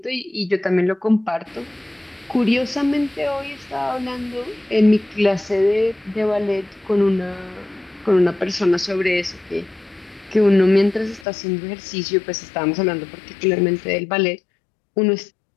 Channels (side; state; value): right; drops out; at 11.2 s